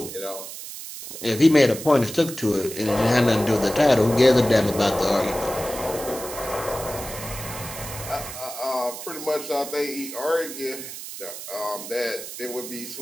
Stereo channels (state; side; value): noise; right; hiss, 10 dB below the sound